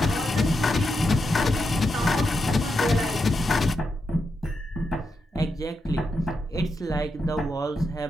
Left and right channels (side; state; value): both; normal; correlation 0.85